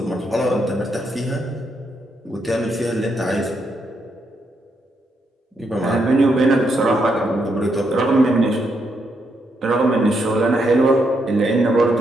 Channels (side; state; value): both; normal; correlation 0.79